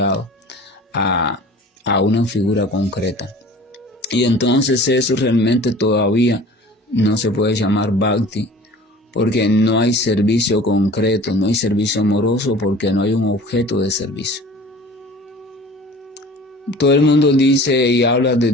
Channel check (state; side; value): normal; both; correlation 0.44